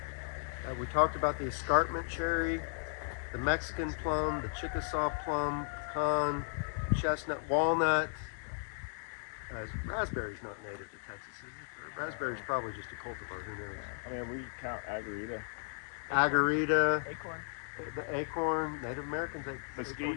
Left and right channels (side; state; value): right; silent; 54 dB below the other